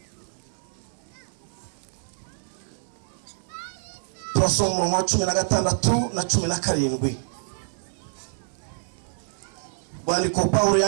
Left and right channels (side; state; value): left; silent; 60 dB below the other